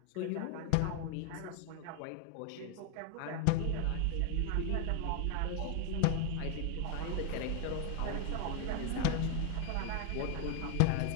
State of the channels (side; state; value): both; different; correlation 0.01